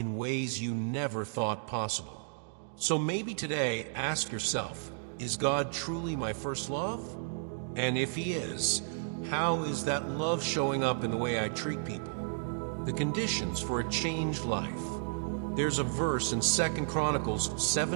ways you never thought possible. So maybe today, ask yourself, is God truly my first love? And if he is, how is that love showing up in the way I treat people? The conditions for a changed life. There's a verse in 2 Chronicles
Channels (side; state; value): left; silent; digital silence